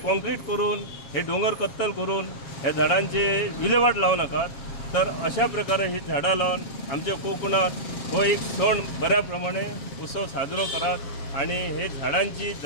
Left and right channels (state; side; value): late; right; 7.4 ms